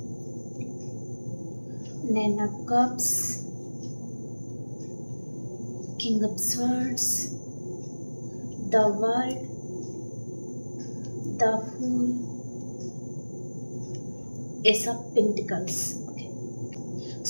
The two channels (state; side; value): inverted; both; correlation -1.00